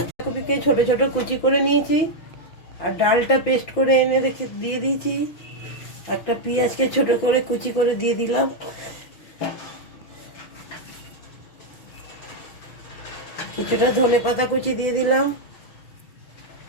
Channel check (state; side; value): late; right; 5.9 ms